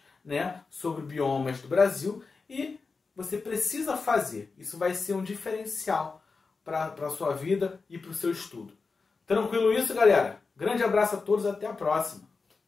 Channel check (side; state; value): right; quieter; 4.4 dB